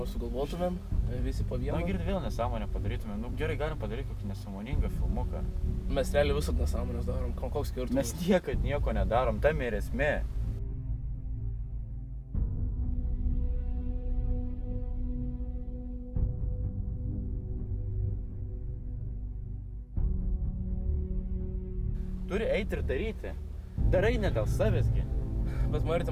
sugalvotumėm, visi po vieną. Na, girdi vėl nesąmonę padarytumėm. Nu, gerai, galim padaryti kokį nesąmoningą filmuką. Mes realiai visat nesąmonės darom, koks skirtumas. Mes niekad nieko nedarom, tam ir esmė. Turi eiti ir daryti. Darai ne dėl savęsgi. Bet Marti,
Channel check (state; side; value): identical; both; correlation 1.00